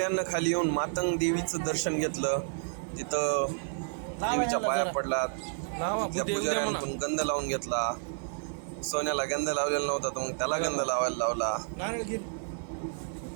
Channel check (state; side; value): silent; left; digital silence